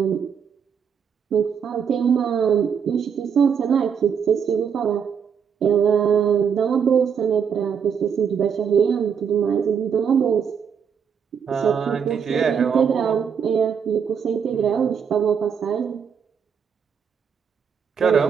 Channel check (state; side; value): quieter; left; 7.1 dB